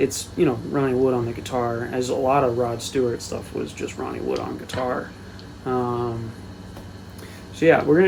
Ronnie Wood on the guitar, as a lot of Rod Stewart stuff was just Ronnie Wood on guitar. So yeah, we're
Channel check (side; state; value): both; identical; correlation 1.00